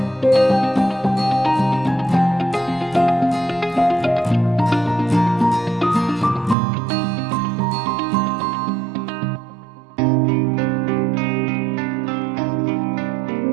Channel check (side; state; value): left; drops out; at 6.6 s